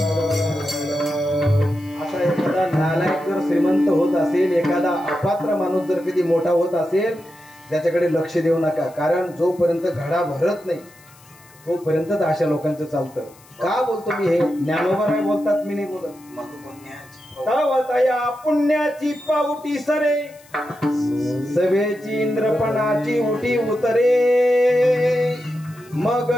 असा एखादा नालायक जर श्रीमंत होत असेल एखादा अपात्र माणूस जर कधी मोठा होत असेल त्याच्याकडे लक्ष देऊ नका. कारण जोपर्यंत घडा भरत नाही तोपर्यंतच अशा लोकांचं चालतं. का बोलतो मी हे ज्ञानोबा राय बोलतात मी नाही बोलत. तवतया पुण्याची पावटी सरे सवेची इंद्रपणाची उटी उतरे मग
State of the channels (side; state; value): left; noise; hiss, 26 dB below the sound